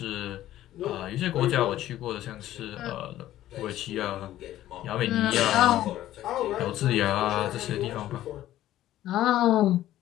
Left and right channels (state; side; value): quieter; right; 13.6 dB